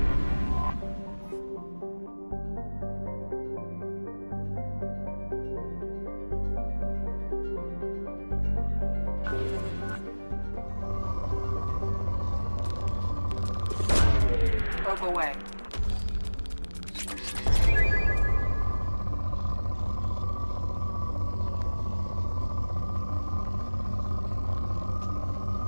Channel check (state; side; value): inverted; both; correlation -1.00